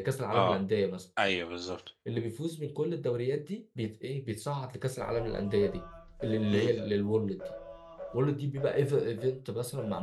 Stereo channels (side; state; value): both; identical; correlation 1.00